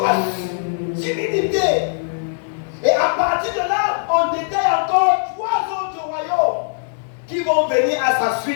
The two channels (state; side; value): silent; right; 64 dB below the other